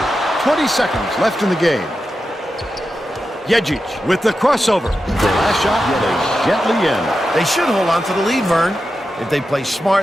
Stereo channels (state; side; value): normal; both; correlation 0.90